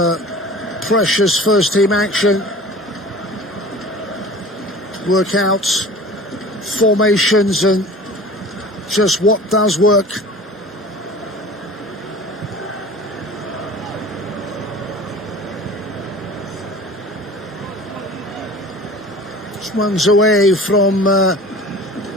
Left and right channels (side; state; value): both; normal; correlation 0.41